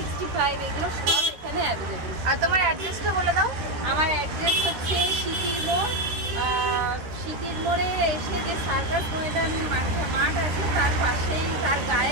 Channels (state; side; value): late; left; 13 ms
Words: এগুলো সব এখানে অ্যাভেলেবেল। আর তোমার অ্যাড্রেসটা বলে দাও। আমার অ্যাড্রেস হচ্ছে সিটির মোড়। সিটির মোড়ে এসে যে সার্কাস ময়দান মাঠ আছে তার পাশেই, তার